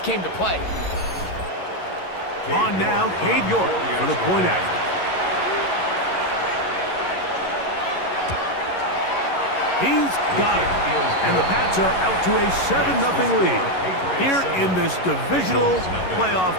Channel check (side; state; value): right; late; 11 ms